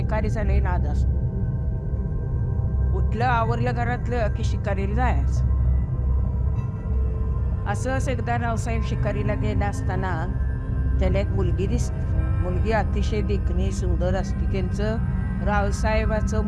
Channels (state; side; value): identical; both; correlation 1.00